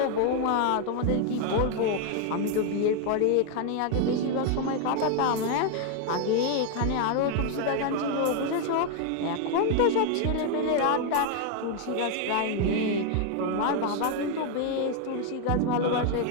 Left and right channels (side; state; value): both; different; correlation 0.01